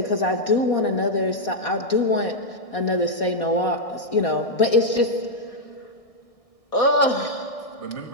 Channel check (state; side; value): late; right; 1.6 ms